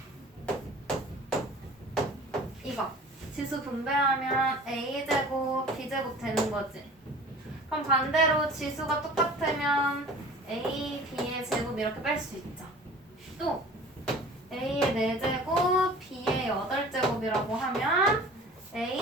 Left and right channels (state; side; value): normal; both; correlation 0.43